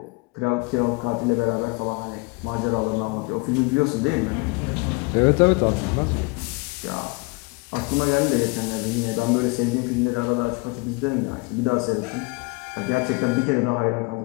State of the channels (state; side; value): quieter; right; 28.6 dB